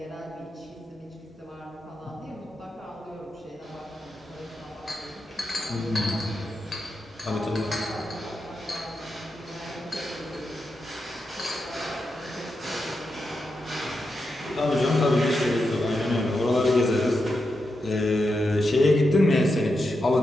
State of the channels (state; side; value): normal; both; correlation 0.87